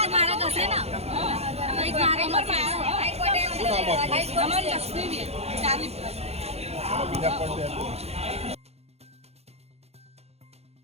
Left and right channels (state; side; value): late; left; 0.30 ms